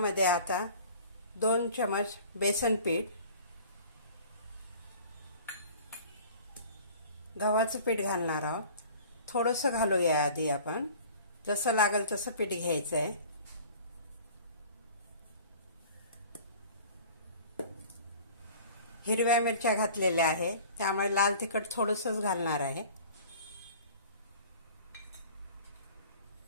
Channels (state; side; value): inverted; both; correlation -0.45